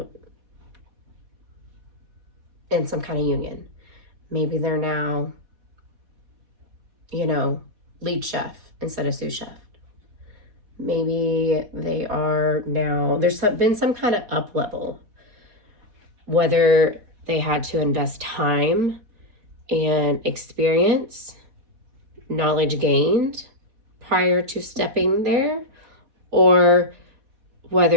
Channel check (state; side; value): late; left; 4.1 ms